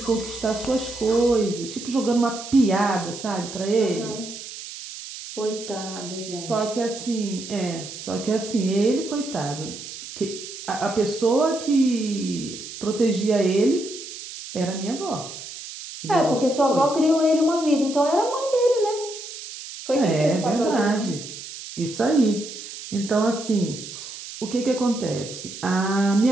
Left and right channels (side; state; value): right; noise; hiss, 11 dB below the sound